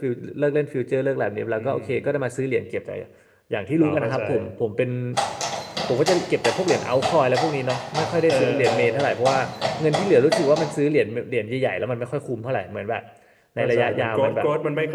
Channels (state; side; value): identical; both; correlation 1.00